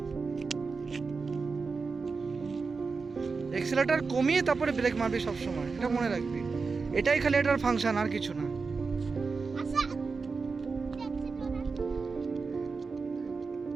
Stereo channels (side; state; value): left; quieter; 4.6 dB